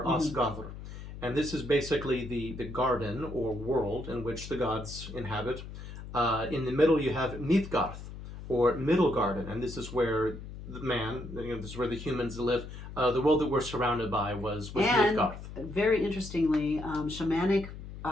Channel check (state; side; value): noise; left; hum, 11 dB below the sound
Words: Asgardr. And this is basically the garden or world in which the gods inhabit. In the middle, you have Midgarth, or Middle Garden, and this is where the man, this is where the humans live. The world that we're surrounded by was Midgarth. Very interestingly, shamanic,